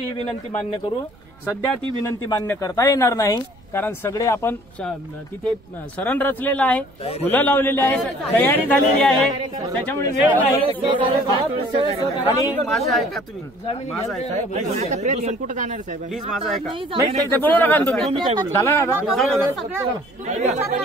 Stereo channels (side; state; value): right; noise; rumble, 28 dB below the sound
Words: ही विनंती मान्य करू. सध्या ती विनंती मान्य करता येणार नाही कारण सगळे आपण तिथे सरण रचलेलं आहे, फुलं लावलेली आहे, तयारी झालेली आहे, त्याच्यामुळे वेळ नाही. आणि माझं ऐका तुम्ही माझं ऐका कुठं जाणार साहेब प्लीज माझं ऐका नाही ते बोलू नका तुम्ही काय बोलू झाला ना